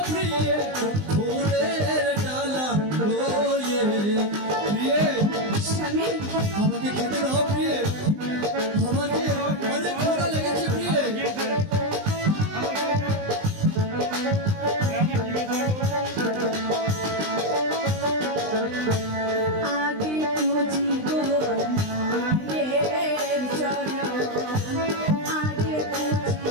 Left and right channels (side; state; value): left; late; 20 ms